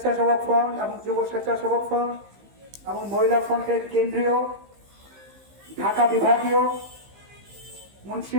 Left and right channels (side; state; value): left; late; 15 ms